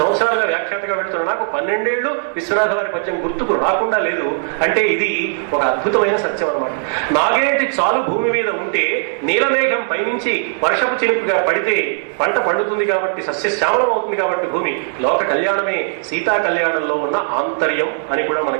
సంవత్సరాలుగా వ్యాఖ్యాతగా వెళ్తున్న నాకు 12 ఏళ్ళు విశ్వనాథ వారి పద్యం గుర్తుకు రాకుండా లేదు అంటే ఇది ఒక అద్భుతమైన సత్యం అన్నమాట. నాగేటి చాలు భూమి మీద ఉంటే నీలమేఘం పైనుంచి వర్షపు చినుకుగా పడితే పంట పండుతుంది కాబట్టి సస్యశ్యామలం అవుతుంది కాబట్టి భూమి లోక కళ్యాణమే సీతా కళ్యాణంలో ఉన్న ఆంతర్యం అని కూడా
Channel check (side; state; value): left; silent; 66 dB below the other